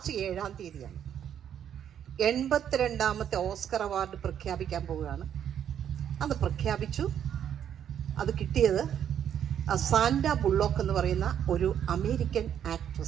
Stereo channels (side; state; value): left; quieter; 9.3 dB